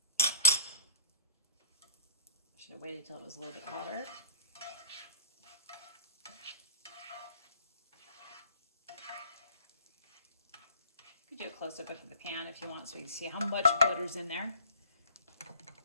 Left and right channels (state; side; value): inverted; both; correlation -0.50